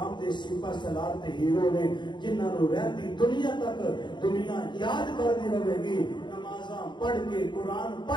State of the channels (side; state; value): right; late; 0.22 ms